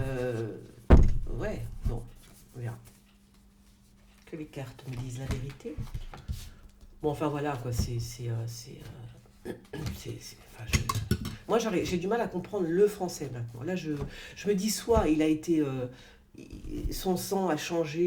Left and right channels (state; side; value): identical; both; correlation 1.00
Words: Ouais, bon, on verra. Que les cartes me disent la vérité. Bon, enfin voilà, quoi, moi, j'ai du mal à comprendre le français maintenant. Là, je me dis, soit il a été... son sang a